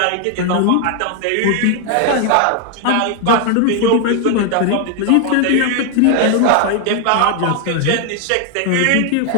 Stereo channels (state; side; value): different; both; correlation 0.00